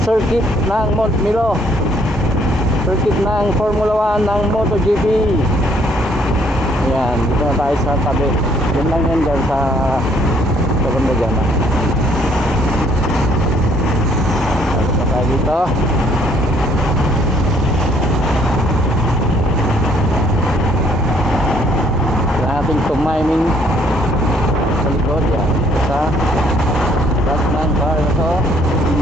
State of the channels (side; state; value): both; normal; correlation 0.64